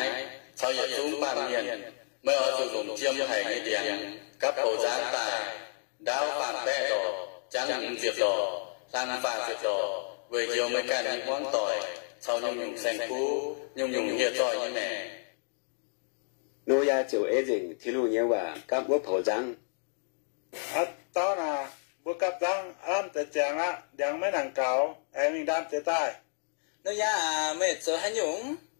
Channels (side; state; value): right; silent; 57 dB below the other